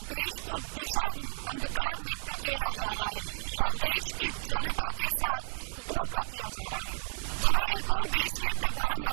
देश को दिशाहीन अंधकार में धकेला जा रहा है और देश की जनता के साथ धोखा किया जा रहा है। जहां एक और देश के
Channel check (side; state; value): left; silent; 56 dB below the other